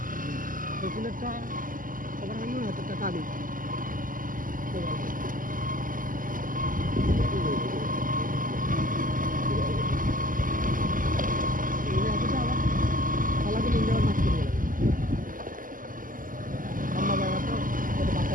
একটা খবর হলো হাতের টাকা আদি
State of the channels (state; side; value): late; left; 0.40 ms